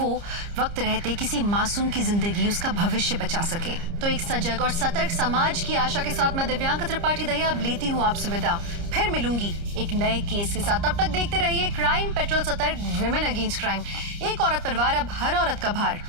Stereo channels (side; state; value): left; late; 30 ms